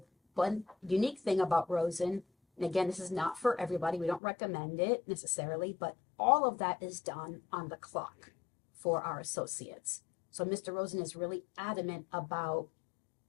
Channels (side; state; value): right; drops out; at 4.2 s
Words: one unique thing about Rosen, and again, this is not for everybody, we don't recommend it necessarily, but all of that is done on the clock for our associates. So Mr. Rosen is really adamant about